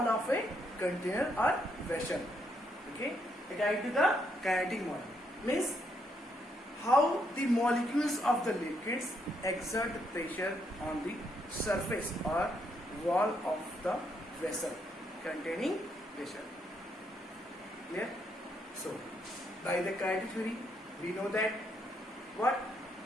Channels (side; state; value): both; normal; correlation 0.75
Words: of a container or vessel. Okay, according to the kinetic model, means how the molecules of the liquids exert pressure on the surface or wall of the vessel containing pressure. Clear? So, by the kinetic theory, we know that what